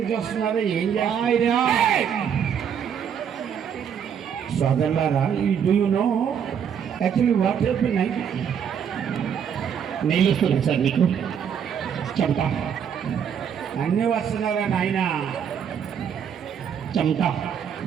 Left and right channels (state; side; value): quieter; left; 8.0 dB